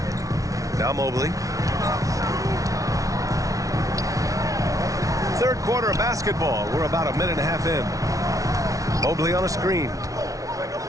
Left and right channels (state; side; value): late; left; 0.17 ms